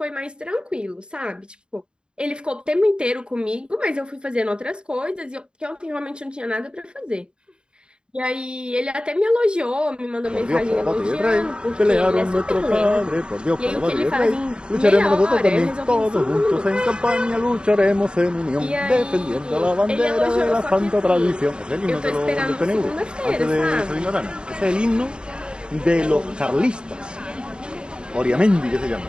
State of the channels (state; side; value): late; left; 0.051 ms